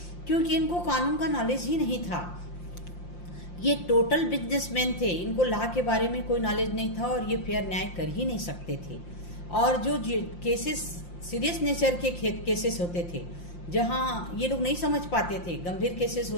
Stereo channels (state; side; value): late; right; 5.7 ms